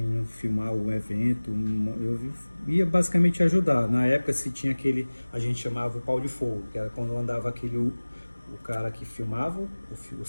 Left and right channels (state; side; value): inverted; both; correlation -1.00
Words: filmar o evento, eu ia basicamente ajudar. Na época se tinha aquele, a gente chamava o pau de fogo, que era quando andava aquele... O cara que filmava, o